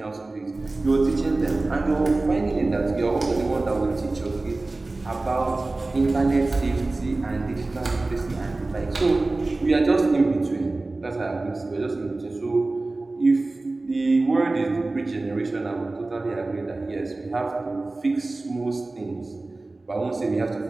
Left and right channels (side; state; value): left; quieter; 3.1 dB